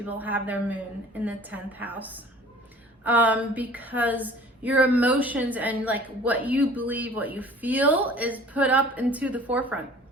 have their moon in the 10th house, because your emotions and like what you believe, what you feel is put up into the forefront.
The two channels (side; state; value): both; normal; correlation 0.48